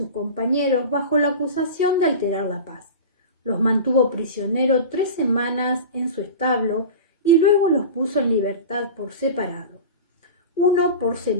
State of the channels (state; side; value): inverted; both; correlation -0.31